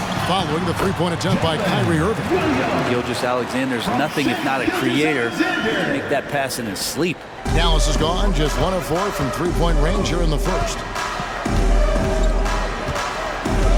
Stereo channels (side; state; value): both; identical; correlation 1.00